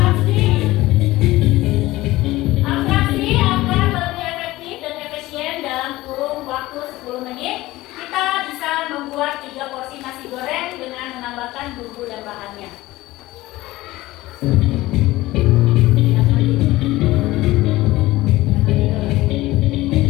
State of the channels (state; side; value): quieter; right; 18.0 dB